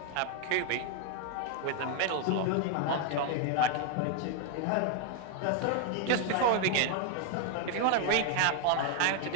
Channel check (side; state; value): both; different; correlation 0.01